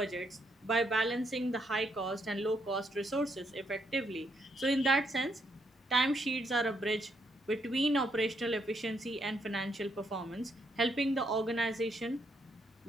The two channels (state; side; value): normal; both; correlation 0.75